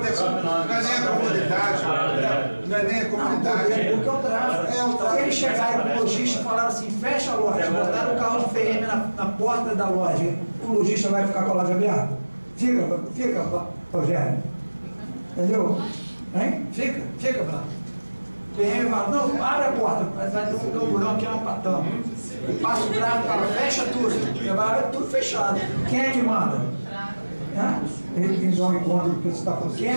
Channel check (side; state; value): both; inverted; correlation -1.00